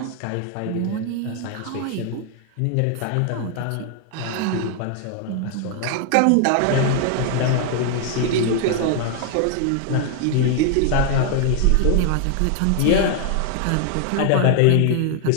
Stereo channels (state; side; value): different; both; correlation 0.00